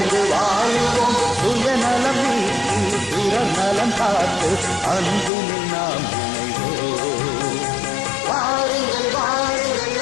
வாழுவோம். சுயநலம் நீக்கி பிறர் நலம் காத்து அன்பினில் நாம் இணைவோம். வாருங்கள் வாருங்கள்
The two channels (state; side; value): drops out; right; at 5.3 s